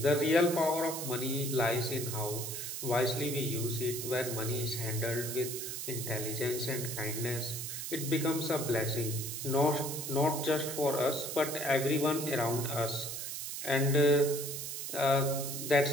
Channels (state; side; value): noise; right; hiss, 5 dB below the sound